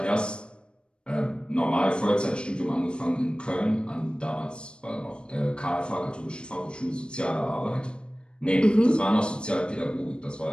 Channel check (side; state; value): right; late; 0.055 ms